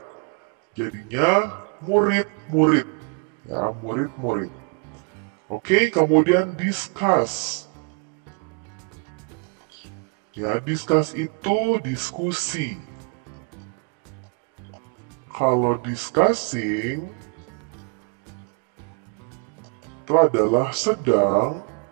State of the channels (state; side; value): quieter; left; 34.1 dB